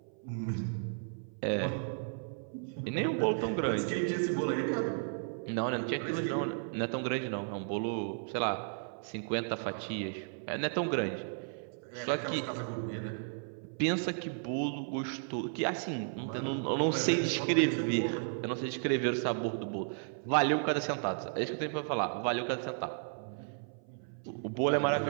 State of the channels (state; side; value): silent; left; 55 dB below the other